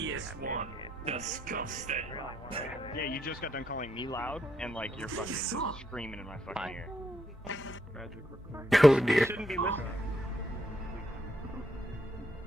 Disgusting. Yeah, you just got done calling me loud, and like you're fucking screaming in my fucking ear. Oh dear. Shouldn't be listening.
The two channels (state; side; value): normal; both; correlation 0.76